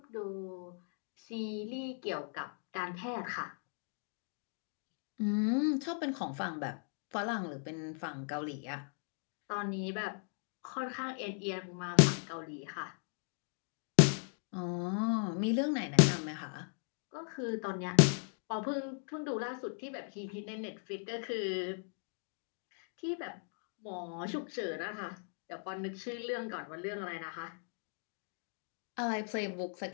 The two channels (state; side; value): silent; right; 53 dB below the other